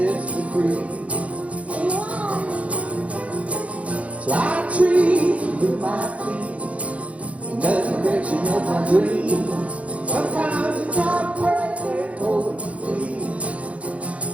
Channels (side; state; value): left; late; 0.065 ms